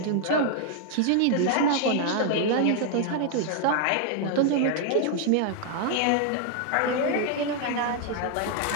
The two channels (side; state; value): both; different; correlation 0.00